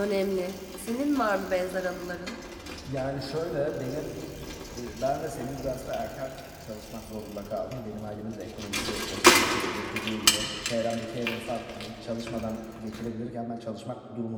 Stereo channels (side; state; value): both; identical; correlation 1.00